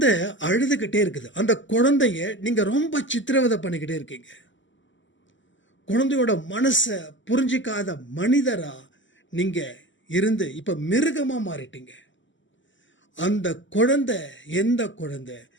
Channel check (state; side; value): late; right; 0.55 ms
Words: அழுதுகிட்டே இருக்குது. அந்த குழந்தைய நீங்க ரொம்ப சித்திரவதை பண்ணிக்கிட்டே இருக்கீங்க. குழந்தையோட மனசை புரிஞ்சிக்காத மனிதரா நீங்க இருந்து இப்ப மிருகமா மாறிட்டீங்க. அந்த குழந்தை எந்த குழந்தை?